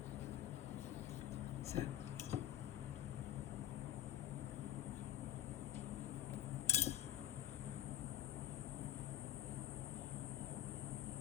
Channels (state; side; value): quieter; right; 12.4 dB